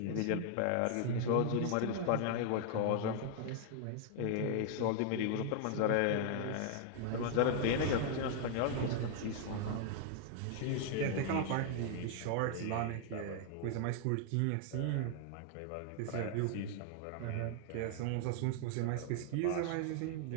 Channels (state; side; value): different; both; correlation 0.00